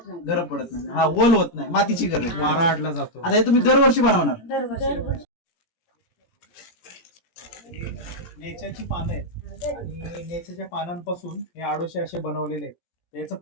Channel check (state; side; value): late; right; 17 ms